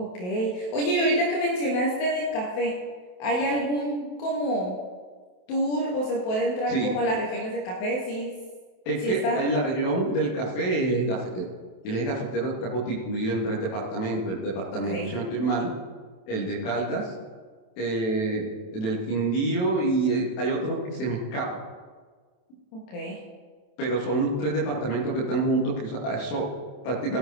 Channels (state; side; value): late; right; 27 ms